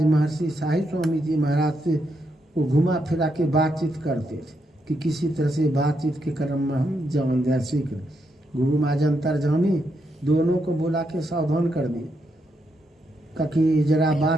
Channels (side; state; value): both; normal; correlation 0.80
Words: महर्षि साई स्वामी जी महाराज से वो घुमा फिरा के बातचीत करते थे कि किसी तरह से बातचीत के क्रम में हम जान जाए, सीख। गुरु महाराज अंतर्जामी दोनों को बुला के सावधान कर दिए कि जरा